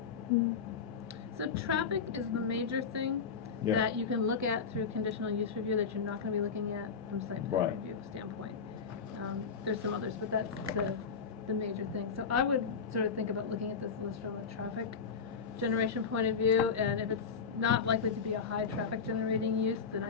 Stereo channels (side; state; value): right; quieter; 5.8 dB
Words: So traffic is the major thing Yeah. that you can look at through conditional use review that you're not going to be looking at from site plan Right. review standpoint. There's some others, but that's the major thing. So I would sort of think about looking at this list from a traffic generation point of view, and if it's not likely to be a high traffic generating use, then I